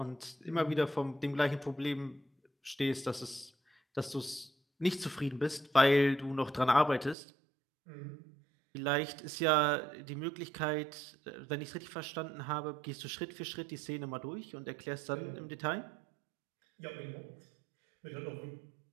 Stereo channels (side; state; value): left; drops out; at 7.2 s